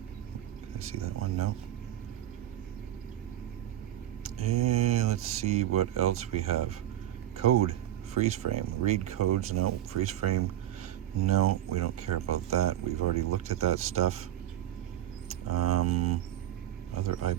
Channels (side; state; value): left; quieter; 12.5 dB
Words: Can I see that one? No. And let's see what else we have. Code. Freeze frame. Read codes. No. Freeze frame. No, we don't care about that. We've already looked at that stuff. Other